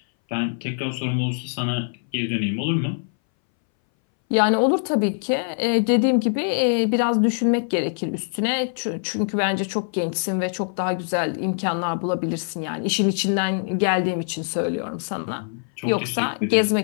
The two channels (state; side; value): silent; right; 61 dB below the other